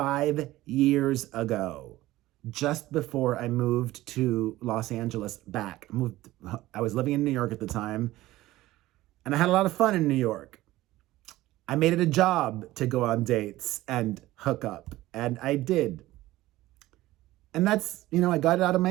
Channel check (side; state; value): left; quieter; 16.8 dB